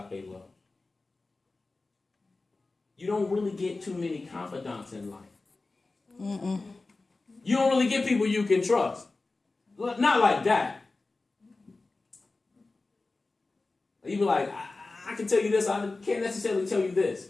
love. You don't really get too many confidants in life. Mm-mm. You don't really get people you can trust. Not like that. You be like, I can tell you this, I can't necessarily tell you this.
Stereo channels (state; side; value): quieter; right; 3.5 dB